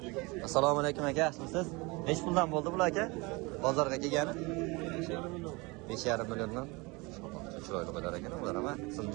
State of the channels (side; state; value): left; quieter; 25.7 dB